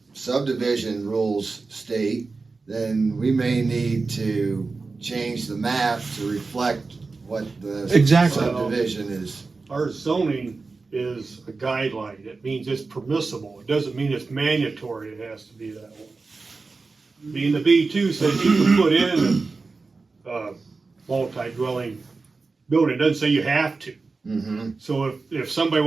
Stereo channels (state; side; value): quieter; left; 4.0 dB